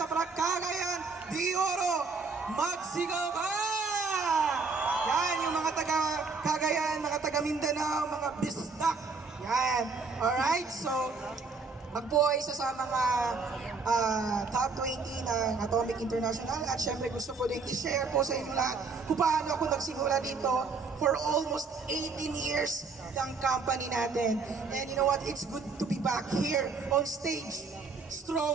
Cagayan de Oro. Magsigaw ka! Yan, yung mga taga Cagayan, mga taga Mindanao, mga bisdak. Yan. Alright, so ako ay isa sa mga top 20 ng Atomic International at syempre gusto ko din i-share po sa inyo lahat kung paano ako nagsimula dito for almost 18 years ng company natin. And you know what? It's good to be back here on stage.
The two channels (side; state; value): left; quieter; 4.5 dB